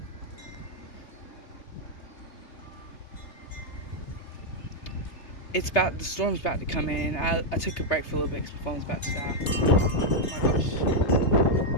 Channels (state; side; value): late; right; 3.1 ms